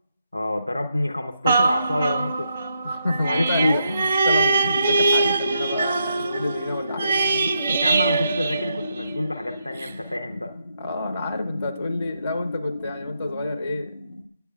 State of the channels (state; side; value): inverted; both; correlation -0.81